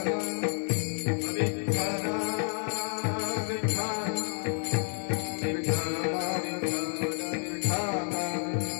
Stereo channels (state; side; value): silent; right; 57 dB below the other